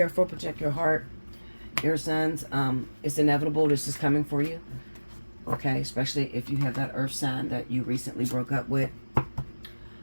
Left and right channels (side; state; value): both; inverted; correlation -1.00